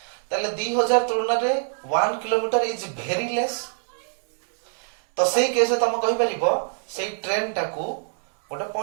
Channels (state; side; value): silent; left; 62 dB below the other